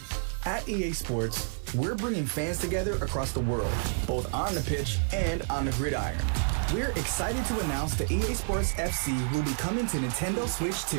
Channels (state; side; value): silent; left; digital silence